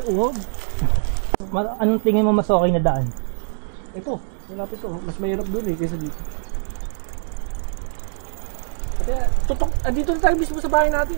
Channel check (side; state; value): left; silent; digital silence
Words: uhog? Anong tingin mo mas okay na daan? Ito, malapit to. Mas mahirap dun eh, kaysa dito. Kaya, dito na tayo mismo sa bahay natin